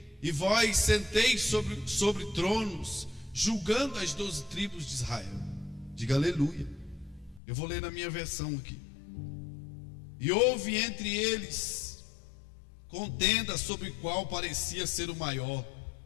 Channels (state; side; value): drops out; right; at 7.4 s